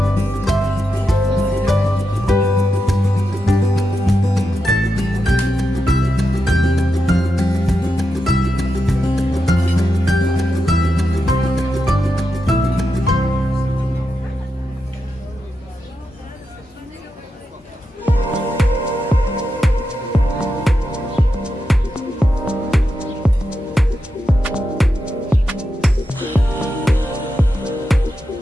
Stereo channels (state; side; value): normal; both; correlation 0.87